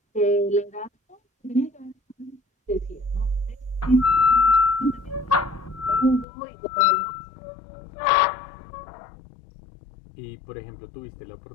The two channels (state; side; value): drops out; right; at 6.2 s